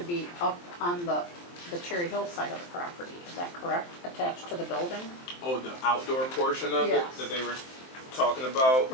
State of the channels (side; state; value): right; late; 23 ms